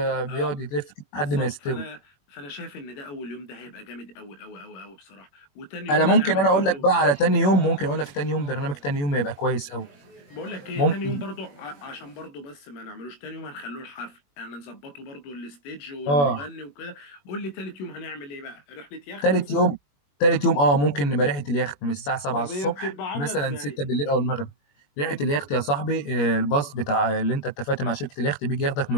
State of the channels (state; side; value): late; right; 21 ms